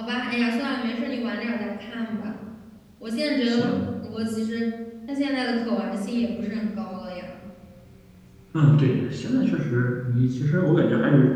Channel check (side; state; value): both; identical; correlation 1.00